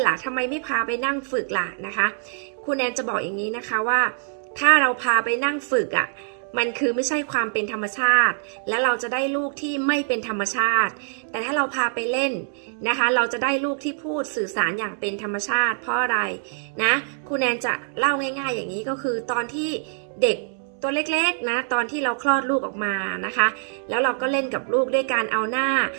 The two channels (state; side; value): silent; left; digital silence